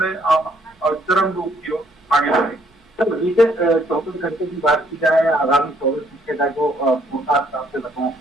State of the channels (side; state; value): both; normal; correlation 0.67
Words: चरम रूप की ओर आगे बढ़ेगी। तो बीते 24 घंटे की बात की जाए, आगामी 24 घंटे का जो फोरकास्ट आपसे बताऊं,